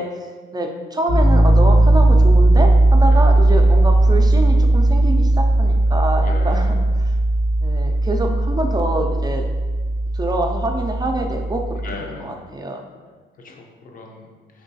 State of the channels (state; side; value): normal; both; correlation 0.91